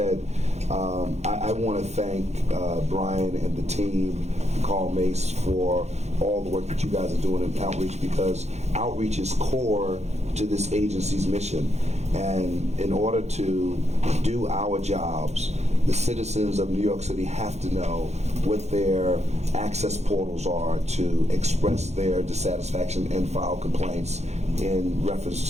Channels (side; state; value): left; late; 0.32 ms